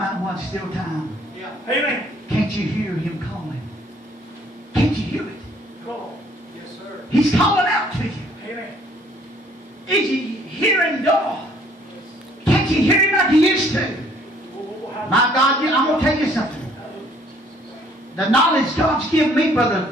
One Still Time. Amen. Can't you hear him calling? Can't you hear it? Come on. Yes, sir. He's calling out to you. Amen. Is you hearing God? Can't you hear him like you used to? My God, I'm going to tell you something. The knowledge God's given me,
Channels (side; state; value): both; normal; correlation 0.60